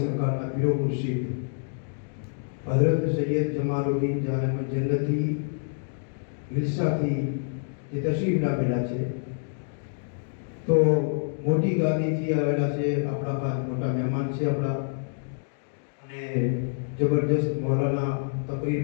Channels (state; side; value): silent; right; digital silence